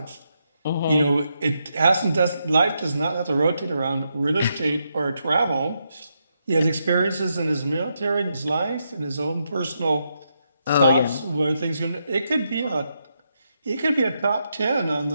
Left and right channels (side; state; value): both; inverted; correlation -0.82